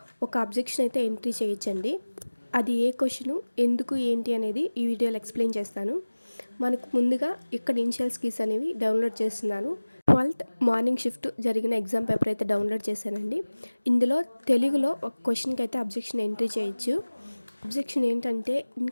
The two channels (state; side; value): inverted; both; correlation -1.00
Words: ఒక అబ్జెక్షన్ అయితే ఎంట్రీ చేయొచ్చండి. అది ఏ క్వశ్చను ఎందుకు ఏంటి అనేది ఈ వీడియోలో ఎక్స్ప్లెయిన్ చేస్తాను. మనకు ముందుగా ఇక్కడ ఇనిషియల్ స్కిల్స్ అనేవి డౌన్లోడ్ చేస్తున్నాను. 12th మార్నింగ్ షిఫ్ట్ జరిగిన ఎగ్జామ్ పేపర్ అయితే డౌన్లోడ్ చేశానండి. ఇందులో తెలుగులో ఒక క్వశ్చన్కి అయితే అబ్జెక్షన్ ఎంట్రీ చేయొచ్చు. అబ్జెక్షన్ ఏంటంటే